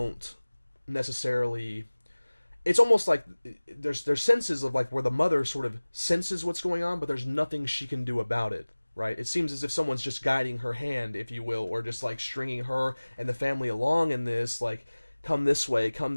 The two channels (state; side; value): inverted; both; correlation -1.00